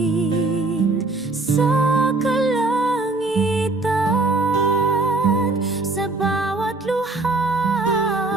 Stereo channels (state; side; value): quieter; left; 3.2 dB